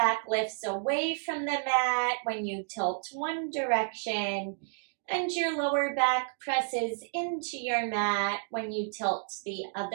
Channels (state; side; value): silent; left; digital silence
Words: lifts away from the mat when you tilt one direction, and your lower back presses into your mat when you tilt the